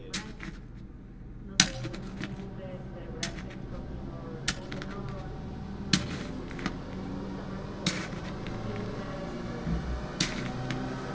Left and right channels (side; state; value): both; identical; correlation 1.00